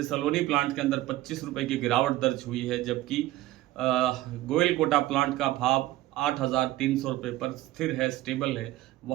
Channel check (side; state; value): left; quieter; 16.0 dB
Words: सलोनी प्लांट के अंदर 25 रुपये की गिरावट दर्ज हुई है, जबकि गोयल कोटा प्लांट का भाव 8,300 रुपये पर स्थिर है, स्टेबल है,